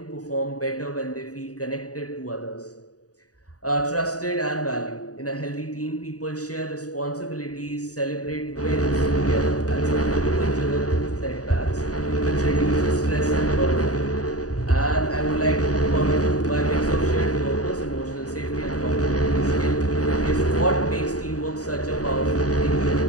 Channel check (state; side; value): late; right; 0.67 ms